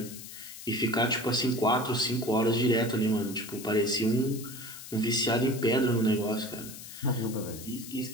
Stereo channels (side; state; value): left; noise; hiss, 13 dB below the sound